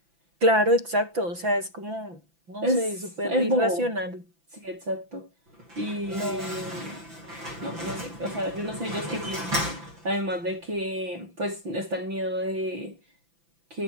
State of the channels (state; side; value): late; left; 5.9 ms